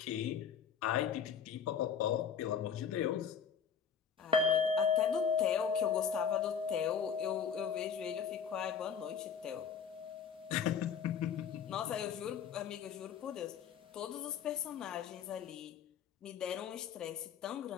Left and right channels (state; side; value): quieter; right; 7.3 dB